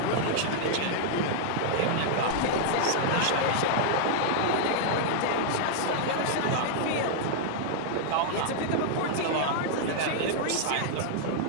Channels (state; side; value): different; both; correlation -0.01